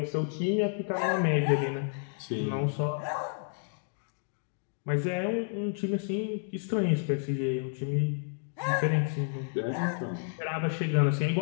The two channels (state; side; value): silent; right; digital silence